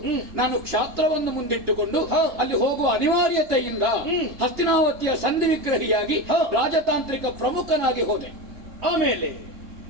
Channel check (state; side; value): late; left; 2.8 ms